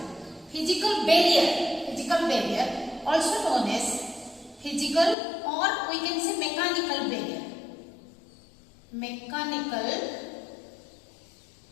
physical barrier, also known as physical or we can say mechanical barrier.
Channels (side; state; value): right; drops out; at 5.2 s